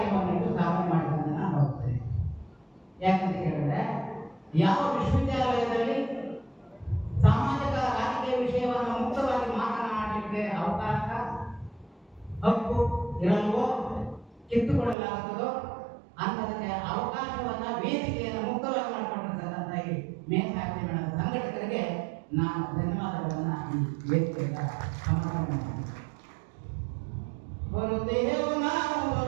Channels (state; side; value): drops out; left; at 15.0 s